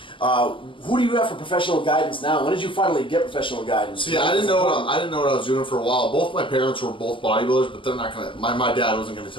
Who do you have for professional guidance now? When did you finally get professional guidance? See, I didn't know what I was doing for a while. Both my parents were both bodybuilders, but they're not gonna. My dad wasn't gonna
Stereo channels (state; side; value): late; right; 0.25 ms